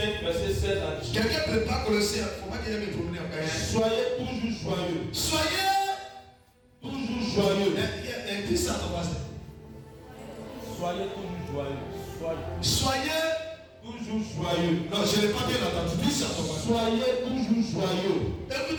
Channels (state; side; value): identical; both; correlation 1.00